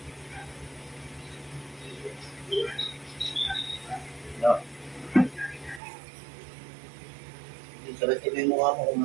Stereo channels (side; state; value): left; drops out; at 5.8 s